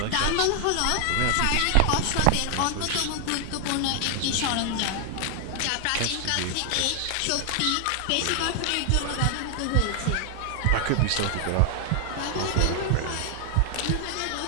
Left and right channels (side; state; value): both; different; correlation 0.00